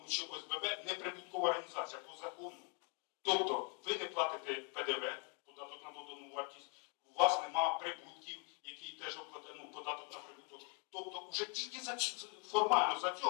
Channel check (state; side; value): quieter; right; 38.0 dB